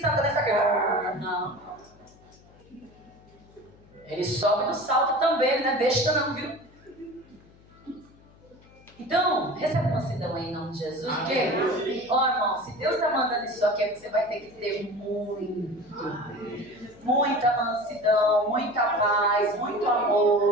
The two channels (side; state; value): left; noise; hum, 26 dB below the sound